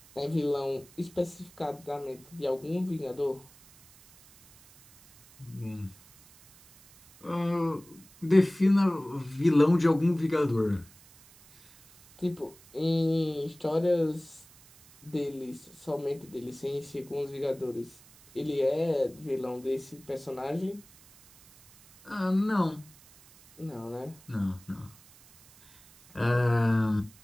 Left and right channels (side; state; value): right; noise; hiss, 25 dB below the sound